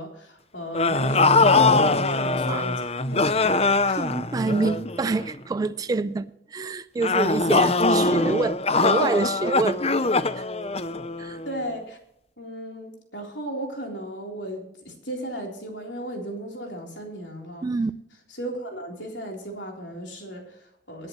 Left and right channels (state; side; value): normal; both; correlation 0.11